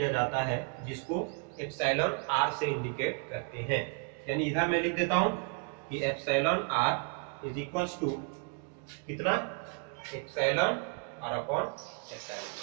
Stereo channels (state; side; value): quieter; left; 36.7 dB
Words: जाता है, जिसको एप्सिलॉन आर से इंडिकेट करते हैं। यानी इधर मैं लिख देता हूं कि epsilon R is equals to कितना, एप्सिलॉन आर अपॉन